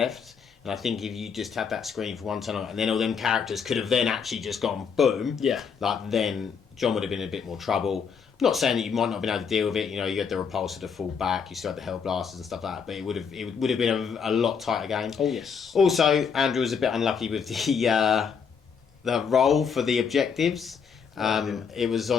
And I think if you just had that screen for one turn, and then all them characters could have then actually just gone boom. Yeah. Like then John would have been in a bit more trouble. Not saying that you might not have been able to deal with it. You know, you had the repulsor to fall back, you still had the hell blasters and stuff like that. But it would have been a lot tighter game. Oh yes. Also, Andrew was a bit unlucky with the roll for the objectives. It was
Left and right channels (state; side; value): quieter; right; 6.4 dB